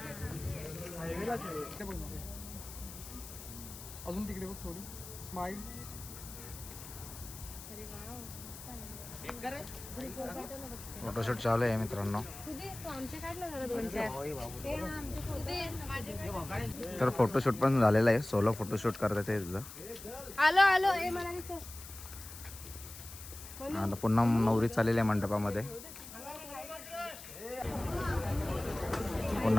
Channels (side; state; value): left; noise; hiss, 13 dB below the sound